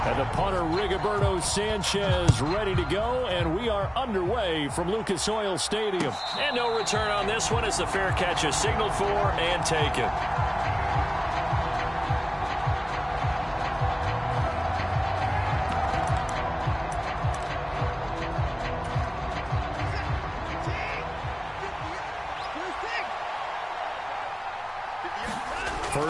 And the punter, Rigoberto Sanchez, ready to go, and we are underway from Lucas Oil Stadium. And no return on this one as the fair catch is signaled for and taken.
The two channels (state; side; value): identical; both; correlation 1.00